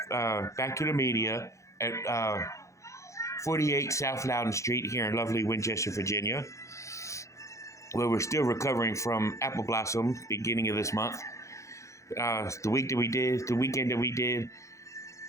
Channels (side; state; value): right; late; 0.15 ms